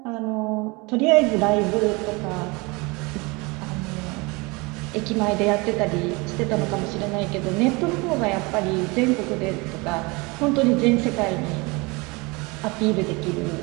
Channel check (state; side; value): quieter; left; 26.4 dB